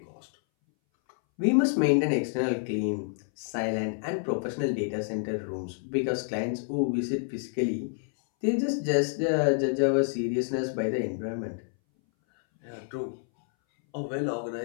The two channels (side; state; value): right; silent; 59 dB below the other